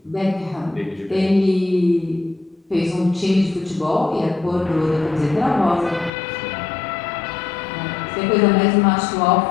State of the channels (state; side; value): drops out; right; at 6.1 s